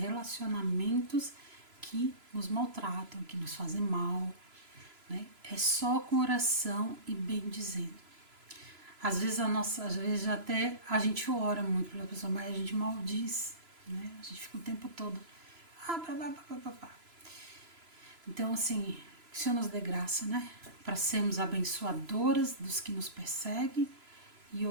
que nos maltratam, que nos fazem mal, né? É só com oração e bendizendo. Às vezes até a gente ora muito pela pessoa, mas a gente maldiz, né? A gente fica o tempo todo. Então, assim, que o Senhor nos dê graça, né? Para sermos abençoadoras dos que nos perseguem e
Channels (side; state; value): left; late; 3.0 ms